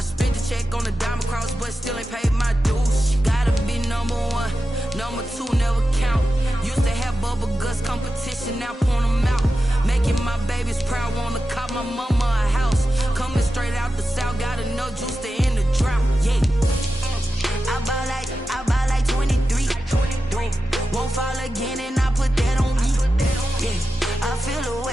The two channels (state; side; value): normal; both; correlation 0.92